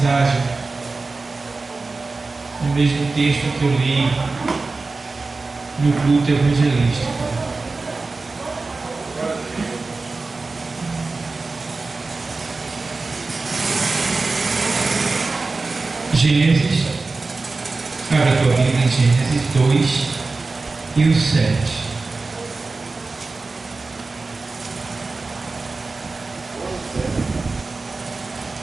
no mesmo texto que eu li no culto evangelístico. Gênesis, abre a tua Bíblia em Gênesis 2 e o 7.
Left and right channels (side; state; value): left; quieter; 3.8 dB